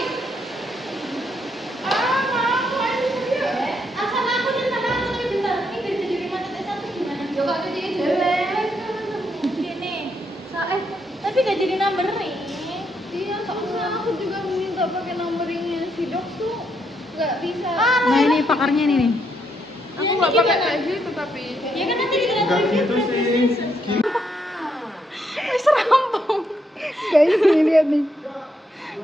Tapi gak jadi numbering. Iya, soalnya aku juga minta pakai numberingnya si dok tuh nggak bisa. Nah, ini pakarnya ini nih. Aku nggak pakai kayak gitu tapi. Ya kan nanti kita enggak gitu sih. Wis rampung. Guys, ini lihat nih.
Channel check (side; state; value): both; normal; correlation 0.77